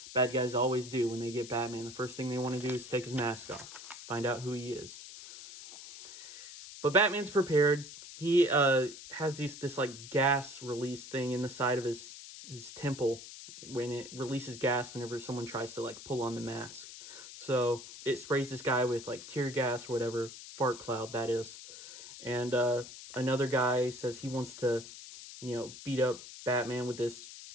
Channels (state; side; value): noise; left; hiss, 14 dB below the sound